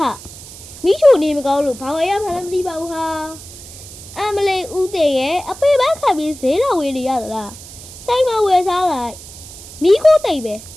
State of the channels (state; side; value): noise; right; hiss, 16 dB below the sound